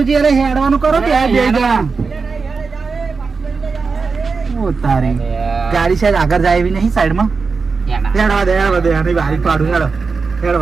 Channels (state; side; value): quieter; left; 4.7 dB